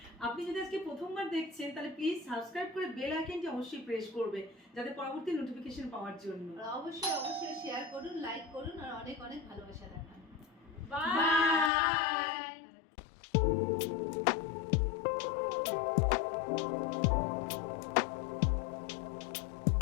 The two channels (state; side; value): drops out; right; at 11.7 s